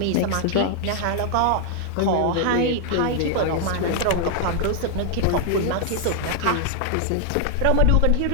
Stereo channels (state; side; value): different; both; correlation 0.00